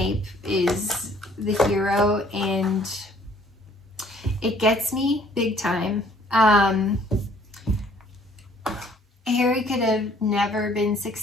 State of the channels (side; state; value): both; normal; correlation 0.59